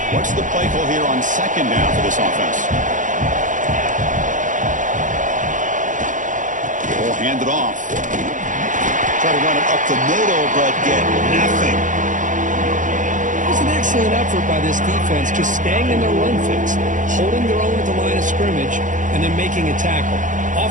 What's the play call here on second down for this offense? We'll hand it off. Try to run it up the middle, but get nothing. It was an excellent effort by this defense, just staying in their run fix, holding their own at the line of scrimmage, and then making a tackle.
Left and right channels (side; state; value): left; late; 0.37 ms